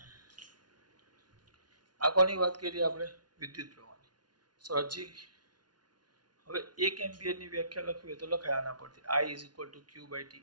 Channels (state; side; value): late; left; 0.70 ms